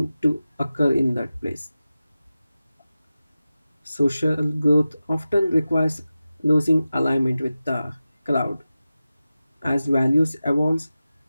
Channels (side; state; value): both; inverted; correlation -0.94